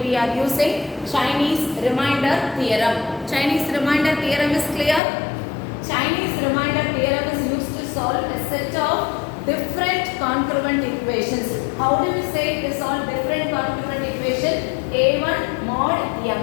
are using Chinese remainder theorem. Chinese remainder theorem is clear? Chinese remainder theorem is used to solve a set of different congruent equations. How do we say to solve different congruent equation? A1 mod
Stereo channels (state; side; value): drops out; right; at 5.0 s